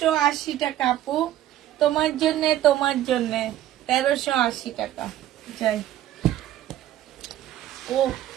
টাকা আপু, তোমার জন্য, তোমার জন্য 1380 টাকা। যাই। ও,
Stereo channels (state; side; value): quieter; left; 12.8 dB